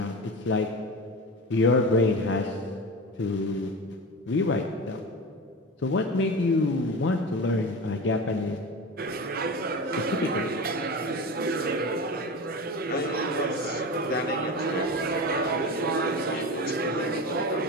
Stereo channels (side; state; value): both; normal; correlation 0.27